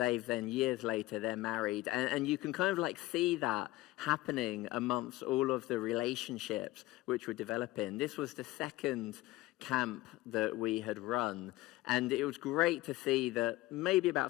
then years later, they're married. And you can kind of like see that happening amongst all of the relationships which were developing. This was the second camp that we had run, and it was great to see that maybe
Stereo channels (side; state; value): right; quieter; 18.2 dB